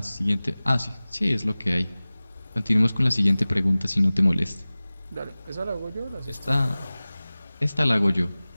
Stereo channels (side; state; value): both; inverted; correlation -0.98